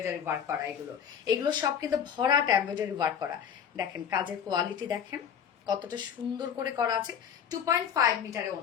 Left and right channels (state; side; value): quieter; right; 8.2 dB